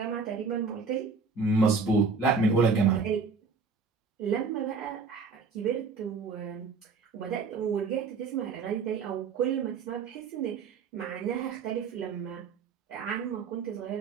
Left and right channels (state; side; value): quieter; left; 4.9 dB